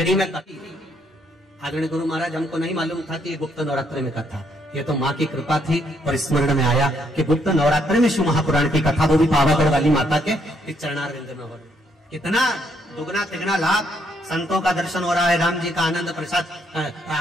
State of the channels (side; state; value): both; normal; correlation 0.72